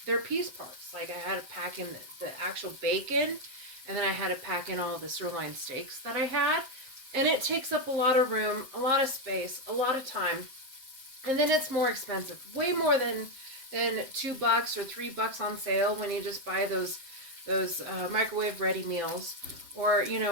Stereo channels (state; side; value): late; left; 7.5 ms